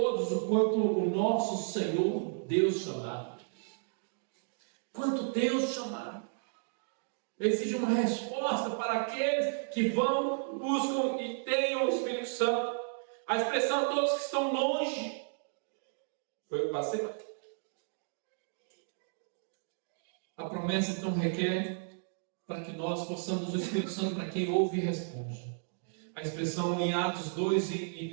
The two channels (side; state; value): left; silent; digital silence